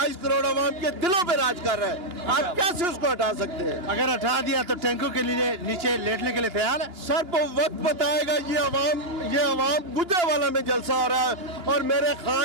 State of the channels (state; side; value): late; left; 2.8 ms